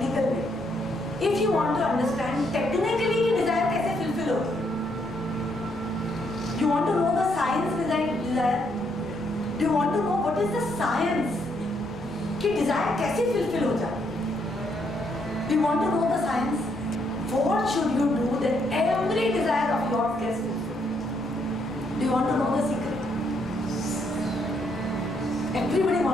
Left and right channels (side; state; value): left; noise; rumble, 22 dB below the sound